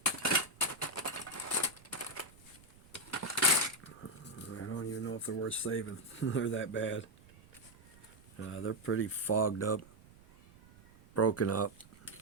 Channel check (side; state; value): right; noise; rumble, 24 dB below the sound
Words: I don't even know if they're worth saving. They're that bad. They're pretty fogged up, broken up.